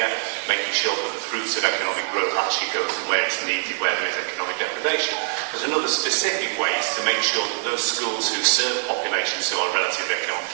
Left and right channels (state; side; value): silent; left; 63 dB below the other